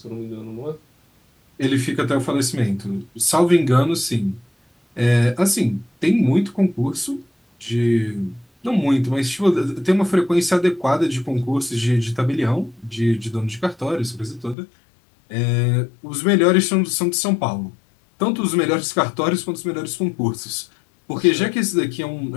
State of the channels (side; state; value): right; drops out; at 14.6 s